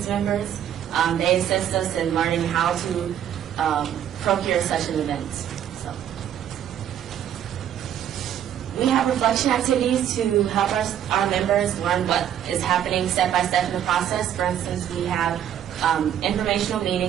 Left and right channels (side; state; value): left; quieter; 10.2 dB